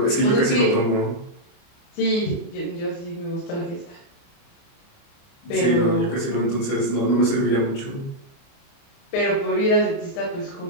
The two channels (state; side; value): late; right; 29 ms